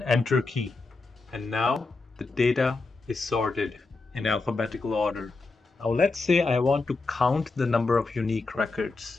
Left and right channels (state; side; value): quieter; right; 3.7 dB